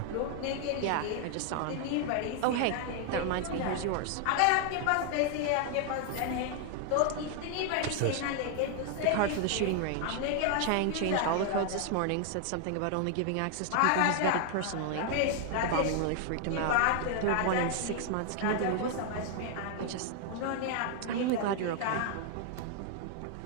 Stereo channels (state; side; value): different; both; correlation 0.00